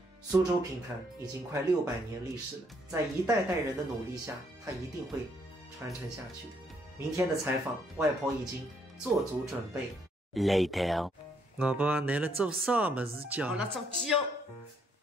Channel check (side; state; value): both; normal; correlation 0.70